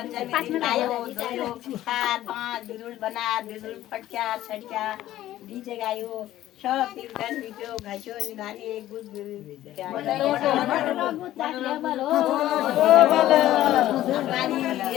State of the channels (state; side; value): quieter; right; 13.9 dB